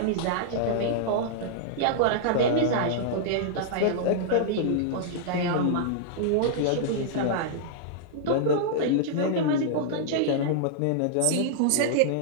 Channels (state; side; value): different; both; correlation -0.01